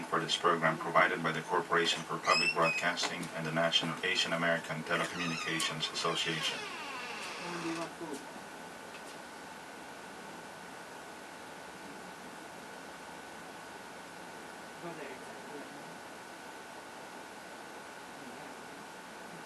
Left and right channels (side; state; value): both; identical; correlation 1.00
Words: for this program provided by the Corporation for Public Broadcasting and the National Asian American Telecommunications Association.